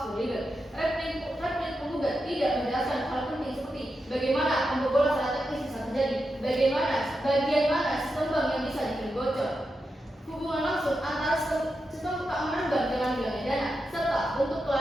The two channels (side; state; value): both; normal; correlation 0.88